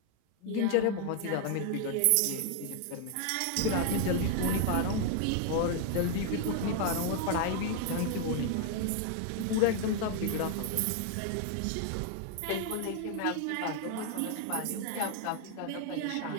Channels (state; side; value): different; both; correlation 0.00